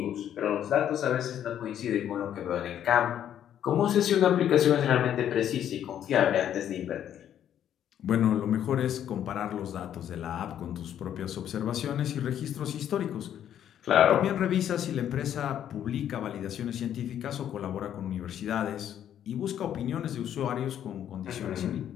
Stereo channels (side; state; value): right; quieter; 10.2 dB